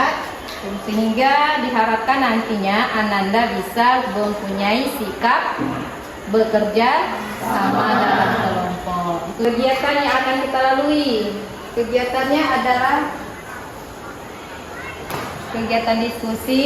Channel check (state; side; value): identical; both; correlation 1.00